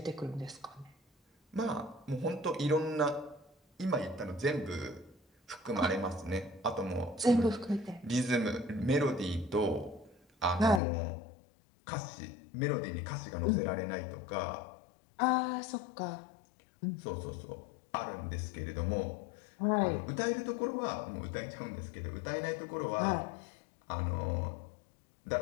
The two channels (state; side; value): drops out; right; at 10.8 s